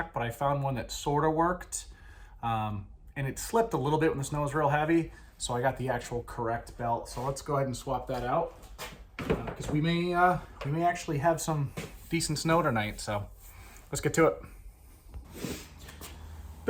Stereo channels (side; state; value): both; identical; correlation 1.00